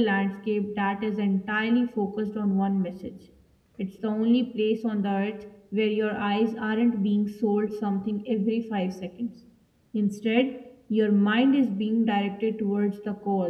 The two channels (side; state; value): both; identical; correlation 1.00